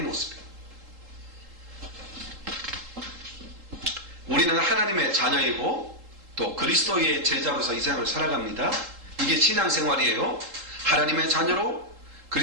우리는 하나님의 자녀이고 또 그리스도의 제자로서 이 세상을 살아갑니다. 이게 신앙생활이에요. 하나님의 자녀로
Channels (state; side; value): late; left; 3.8 ms